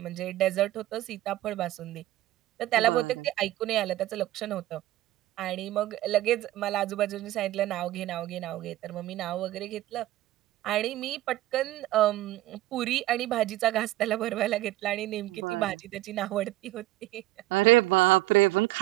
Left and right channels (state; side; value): quieter; left; 16.2 dB